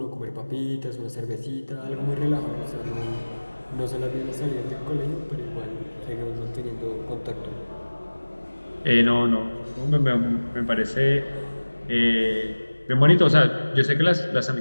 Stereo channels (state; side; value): inverted; both; correlation -1.00